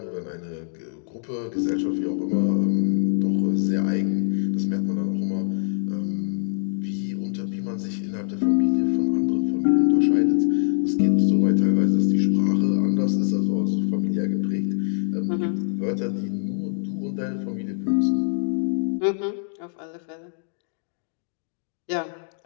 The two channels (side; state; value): right; silent; digital silence